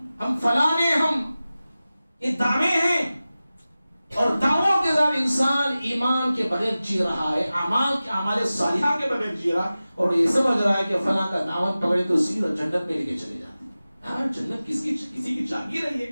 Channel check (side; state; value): both; inverted; correlation -0.96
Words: ہم فلانے ہیں. یہ دعوے ہیں، اور دعووں کے ساتھ انسان ایمان کے بغیر جی رہا ہے، اعمال صالحہ کے بغیر جی رہا ہے، اور یہ سمجھ رہا ہے کہ فلاں کا دعوت پکڑے تو سیدھا جنت میں لے کے چلے جاتے ہیں. ہاں جنت کسی کی جاگیر ہے، یہ